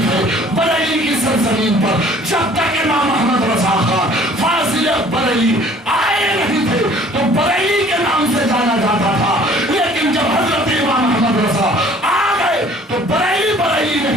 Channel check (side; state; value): both; normal; correlation 0.53